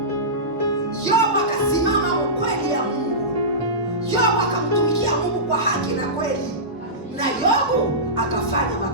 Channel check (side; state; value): both; normal; correlation -0.18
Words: Yobu akasimama ukweli ya Mungu. Yobu akamtumikia Mungu kwa haki na kweli. Na Yobu akafanya